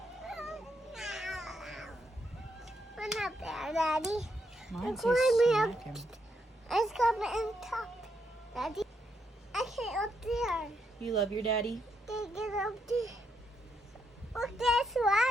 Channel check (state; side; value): normal; both; correlation 0.78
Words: I'm not there, Daddy. Mine It's says climbing smack him. It's coming in top, Daddy. I can't up there. You love your daddy? They get up there. Look, there's